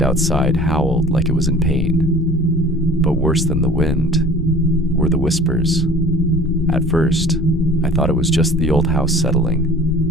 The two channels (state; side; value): normal; both; correlation 0.45